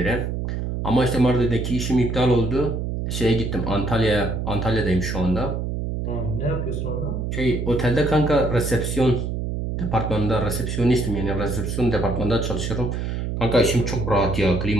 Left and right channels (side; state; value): right; noise; hum, 3 dB below the sound